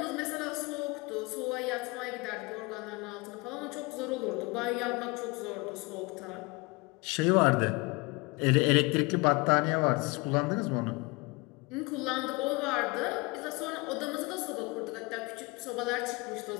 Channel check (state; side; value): quieter; right; 26.4 dB